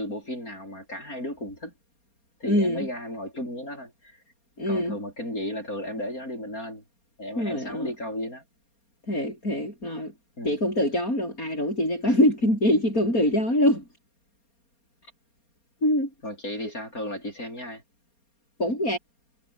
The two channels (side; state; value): right; late; 4.3 ms